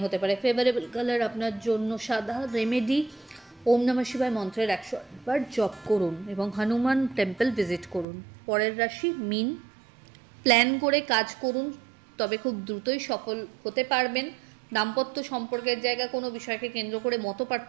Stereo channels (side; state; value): left; drops out; at 8.1 s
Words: হতে পারে। ফেভারেবল কালার আপনার জন্য সাদা। রেমেডি, ওম নমঃ শিবায় মন্ত্রের 108 বার জপ করুন এবং হনুমান টেম্পল ভিজিট করুন। পরের রাশি মীন। প্ল্যান করে কাজ করুন, তবে খুব দ্রুতই সফল হতে পারবেন। দাম্পত্য সম্পর্কের জায়গায় কোনো বিষয়কে কেন্দ্র করে